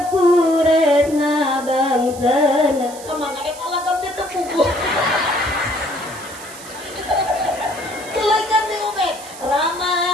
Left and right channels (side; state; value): right; noise; hiss, 16 dB below the sound